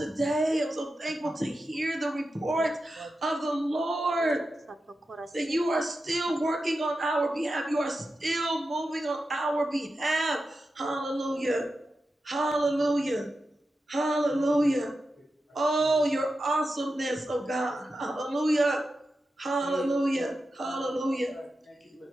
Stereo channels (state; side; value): normal; both; correlation 0.91